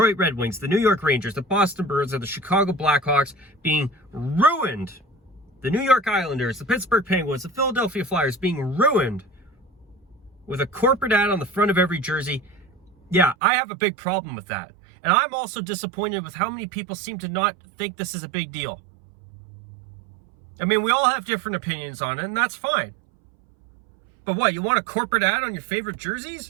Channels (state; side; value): drops out; left; at 13.4 s